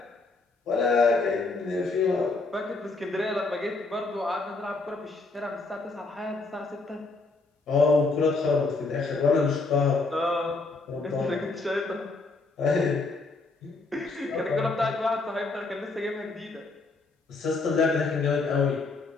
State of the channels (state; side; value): quieter; right; 3.6 dB